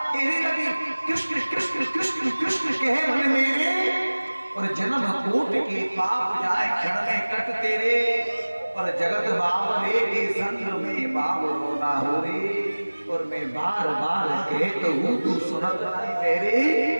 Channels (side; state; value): both; inverted; correlation -1.00